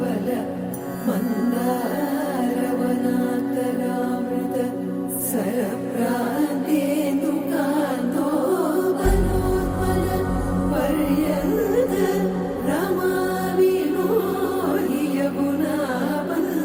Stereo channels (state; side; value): identical; both; correlation 1.00